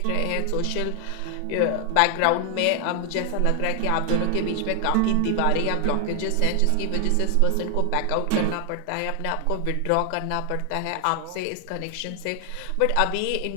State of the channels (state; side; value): different; both; correlation 0.00